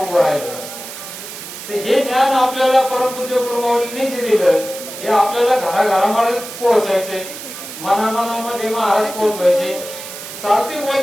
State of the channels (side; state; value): right; noise; hiss, 11 dB below the sound